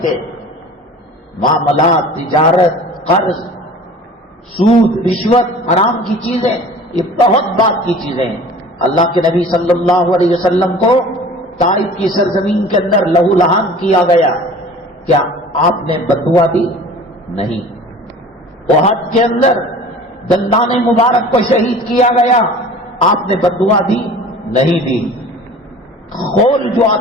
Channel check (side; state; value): both; normal; correlation 0.43